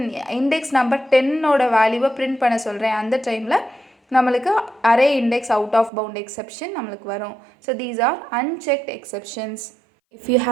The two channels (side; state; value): left; drops out; at 5.9 s